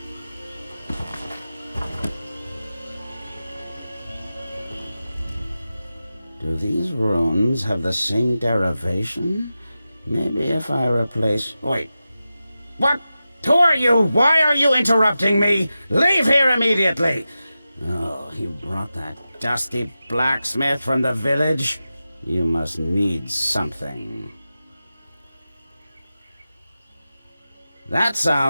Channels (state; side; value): inverted; both; correlation -0.93